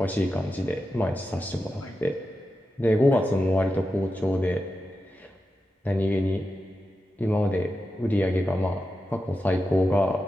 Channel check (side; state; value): both; normal; correlation 0.90